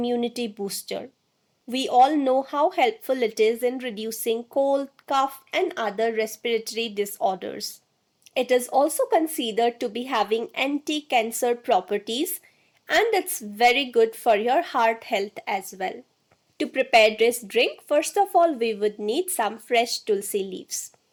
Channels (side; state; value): both; identical; correlation 1.00